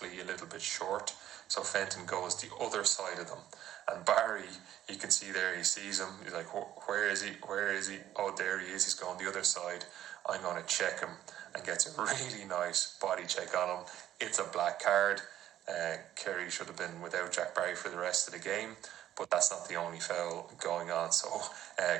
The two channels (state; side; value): quieter; left; 12.1 dB